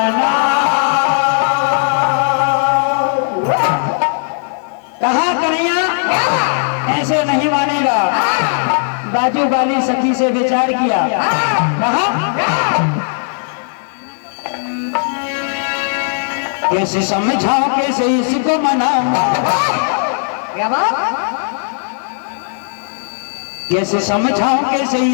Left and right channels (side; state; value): right; silent; 69 dB below the other